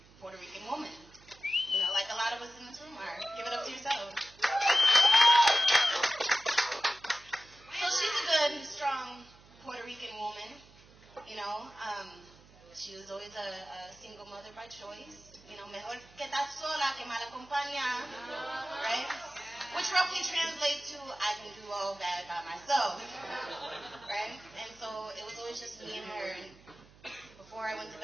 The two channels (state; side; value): noise; right; hum, 25 dB below the sound